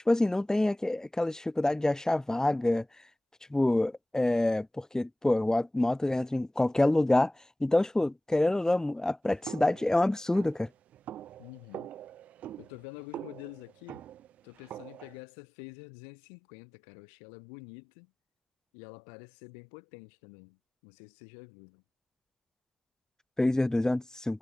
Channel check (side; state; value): both; normal; correlation 0.98